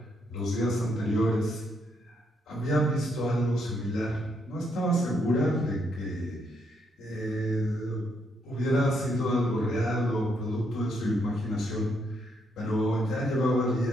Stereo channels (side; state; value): both; normal; correlation 0.75